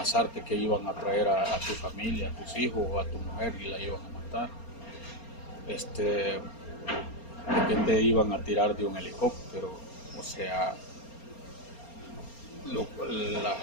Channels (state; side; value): late; right; 4.3 ms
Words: que iban a traer a tu familia, a tus hijos o a tu mujer y la iban a matar, de que te iban a tirar de un helicóptero, o sea,